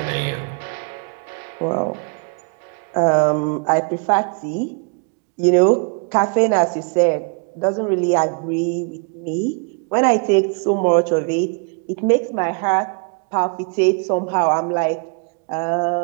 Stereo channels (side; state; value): left; quieter; 36.7 dB